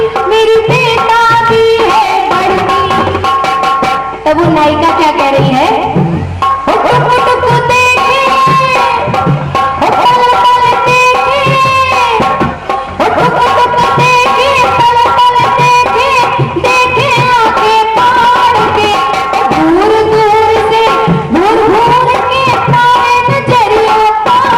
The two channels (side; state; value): both; identical; correlation 1.00